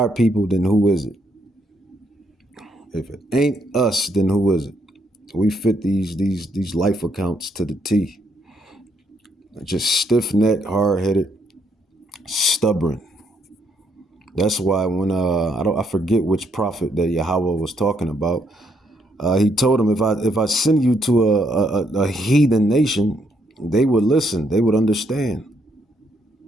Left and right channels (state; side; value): normal; both; correlation 0.73